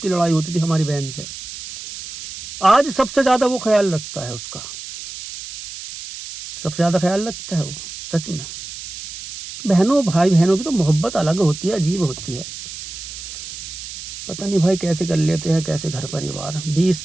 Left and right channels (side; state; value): right; noise; hiss, 11 dB below the sound